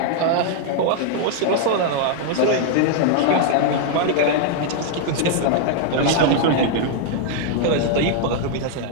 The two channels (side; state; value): both; different; correlation 0.00